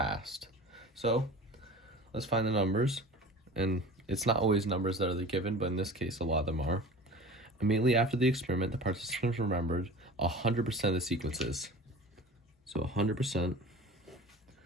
So let's find the numbers, and it's not always numbers that are the given, but in this case a lot of them are. Immediately after the experiment, the participants remembered 100% of the sequences. So 100%.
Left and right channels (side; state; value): both; normal; correlation 0.38